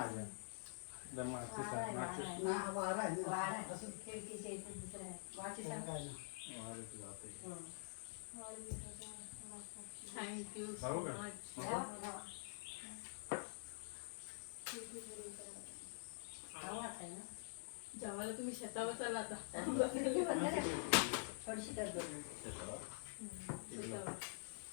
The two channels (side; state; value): right; silent; digital silence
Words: थँक्यू सो मच. जेवायला तुम्ही शेतावर चाला आता.